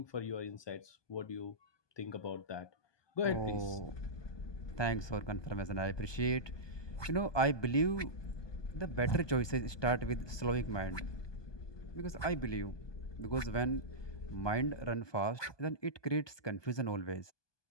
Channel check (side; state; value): right; late; 1.2 ms